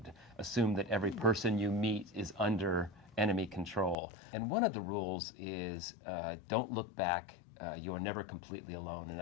assume that every person you meet is under enemy control. And one of the rules is don't look back. You are never completely alone. And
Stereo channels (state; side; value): drops out; right; at 4.0 s